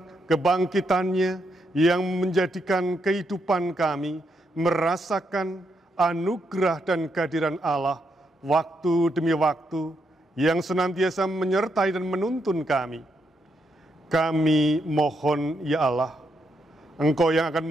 kebangkitannya yang menjadikan kehidupan kami merasakan anugerah dan kehadiran Allah waktu demi waktu yang senantiasa menyertai dan menuntun kami. Kami mohon ya Allah, Engkau yang akan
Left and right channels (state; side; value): normal; both; correlation 0.79